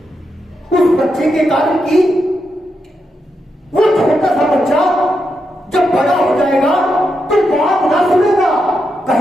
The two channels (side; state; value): both; normal; correlation 0.84